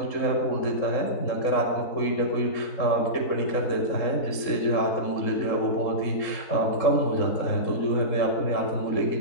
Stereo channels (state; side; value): late; right; 3.7 ms